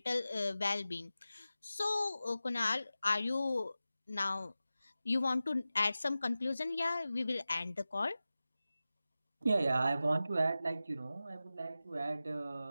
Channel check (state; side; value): inverted; both; correlation -0.94